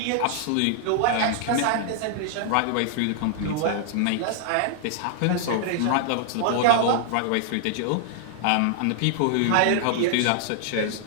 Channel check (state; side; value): different; both; correlation -0.01